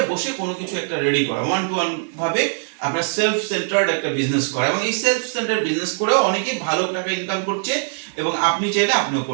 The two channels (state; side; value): silent; left; digital silence